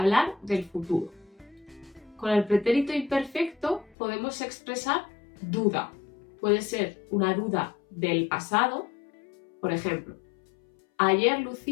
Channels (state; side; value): drops out; right; at 4.0 s